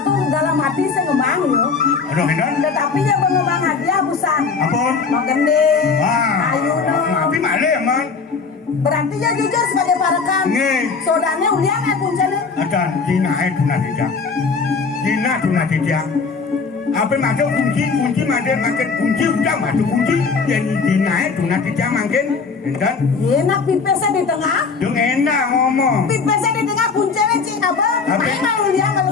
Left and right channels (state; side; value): quieter; right; 4.9 dB